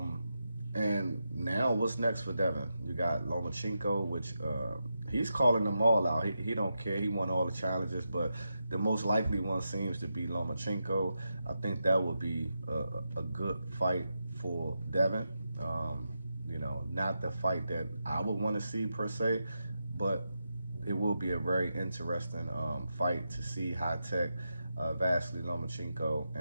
and now what's next for Devin? You got Lomachenko, which he's calling them all out. He don't care. He won all the challenges, but the most likely one seems to be Lomachenko. I think that would be a good fight for Devin. Not the fight that I would want to see per se, but it will be a very interesting fight to see High-Tech, Vasily Lomachenko,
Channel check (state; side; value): inverted; both; correlation -0.87